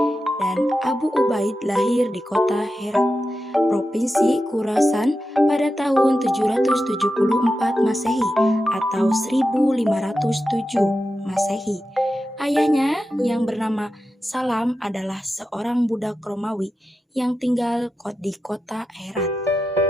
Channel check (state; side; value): normal; both; correlation 0.90